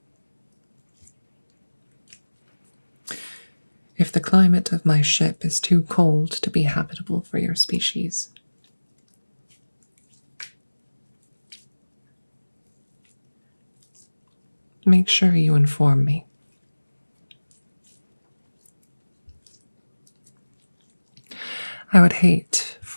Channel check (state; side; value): inverted; both; correlation -1.00